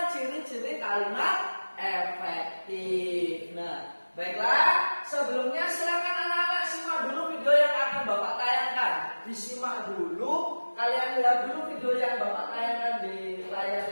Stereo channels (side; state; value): both; inverted; correlation -1.00